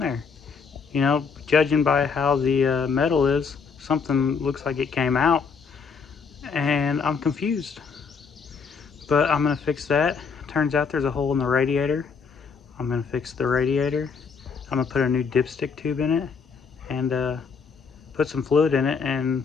You know, judging by how the metal is, something looks like it came out, and I'm confused. But I'm gonna fix that. Turns out there's a hole in the radiator. I'm gonna fix the radiator. I'm gonna put a new dipstick tube in it and put some fluid in it, and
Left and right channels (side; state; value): right; quieter; 5.5 dB